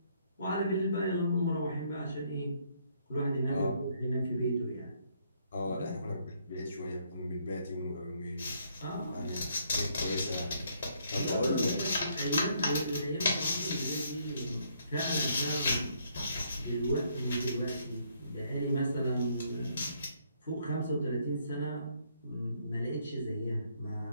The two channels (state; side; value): inverted; both; correlation -0.69